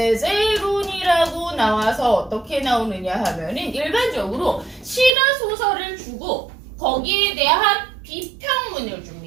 나와서 어떻게 나오느냐 하면은 일반적으로 시나 소설을 주고 거기에 대한 비평문을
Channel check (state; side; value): drops out; left; at 5.1 s